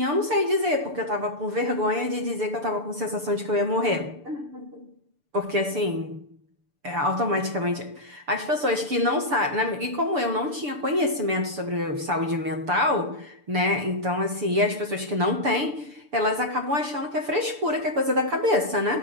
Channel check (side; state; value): left; late; 6.8 ms